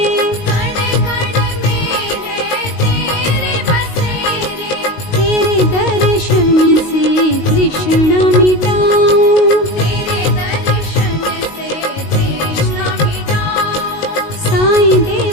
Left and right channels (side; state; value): right; late; 19 ms